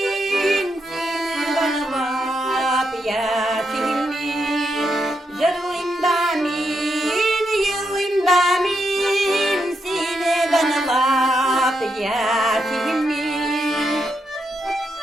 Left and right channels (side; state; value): both; normal; correlation 0.82